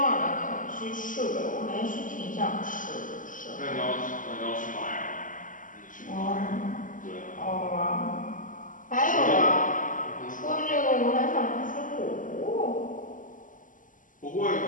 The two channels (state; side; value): late; right; 0.38 ms